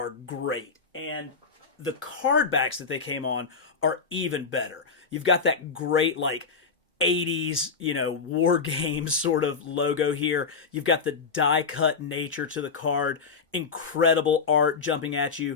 great, and the card backs that they came on are even better. You've got that great, like, 80s, war games sort of logo here. You've got the die-cut nature to the card, incredible art jumping at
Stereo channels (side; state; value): right; quieter; 5.1 dB